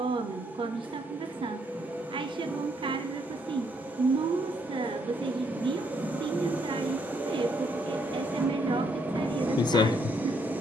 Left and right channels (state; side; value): normal; both; correlation 0.73